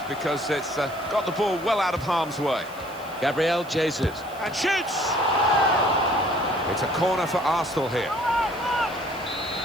because it's got the ball well out of harm's way. Gabriel Jesus. And shoots! It's a corner for Arsenal here.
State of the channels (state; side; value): noise; right; hiss, 22 dB below the sound